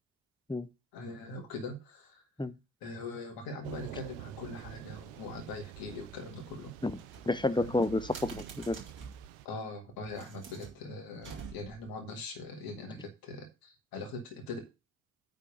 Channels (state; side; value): normal; both; correlation 0.58